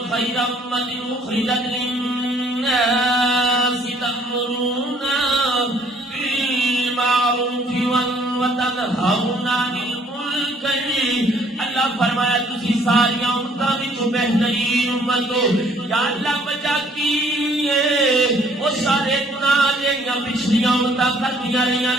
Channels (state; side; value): normal; both; correlation 0.60